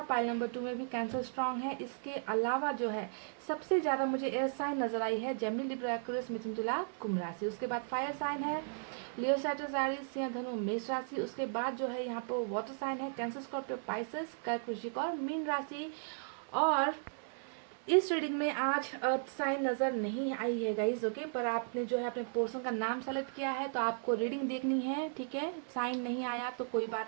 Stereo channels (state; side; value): silent; left; 54 dB below the other